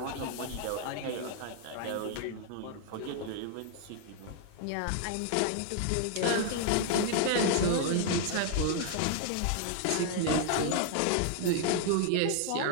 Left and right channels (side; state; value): both; different; correlation 0.00